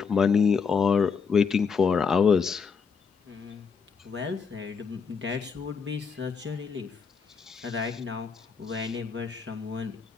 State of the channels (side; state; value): right; quieter; 5.7 dB